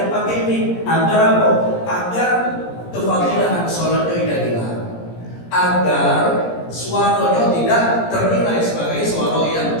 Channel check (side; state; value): right; late; 17 ms